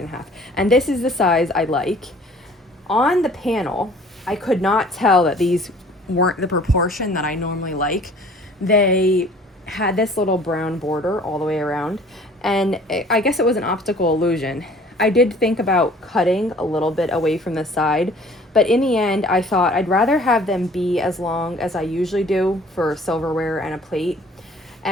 And this is the size I like. On the panel, I could not tell that these weren't the proportion that I normally like. They had this little brown border all the way around, and I guess it was an optical illusion. I did think about cutting a little bit away from the side, but in the end, I thought I'd rather have them be as long as I usually do for silverware and a plate.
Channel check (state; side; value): normal; both; correlation 0.52